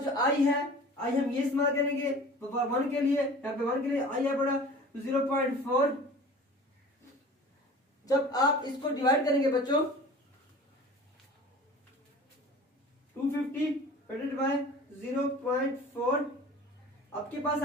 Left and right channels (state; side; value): normal; both; correlation 0.42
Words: जो I है, I हम ये इस्तेमाल करेंगे 1 के लिए, यहाँ पे 1 के लिए I है पड़ा 0.4। जब आप इसको डिवाइड करेंगे बच्चों 250 डिवाइडेड बाय 0.4 आपके पास